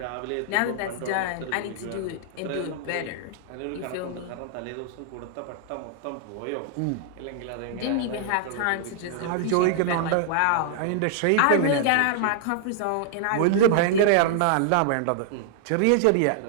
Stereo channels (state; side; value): different; both; correlation -0.01